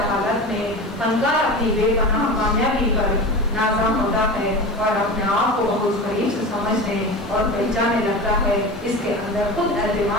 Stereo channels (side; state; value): left; noise; hiss, 29 dB below the sound